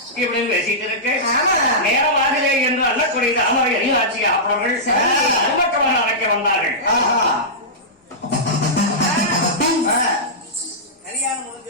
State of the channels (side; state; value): both; normal; correlation -0.15